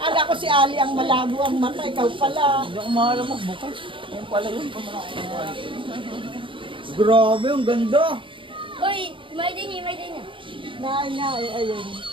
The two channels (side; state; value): left; late; 0.25 ms